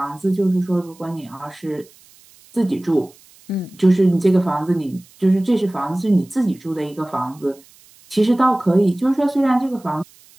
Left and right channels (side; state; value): right; noise; hiss, 27 dB below the sound